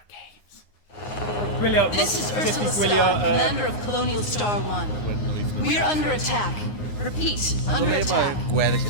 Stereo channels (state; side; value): late; right; 9.6 ms